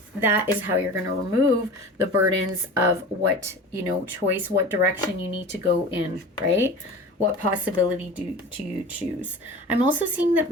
that is how you're going to remove the burdens of what, you know, choice, what direction you need to go in, right? What possibility do you choose? I'm also seeing that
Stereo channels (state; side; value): normal; both; correlation 0.36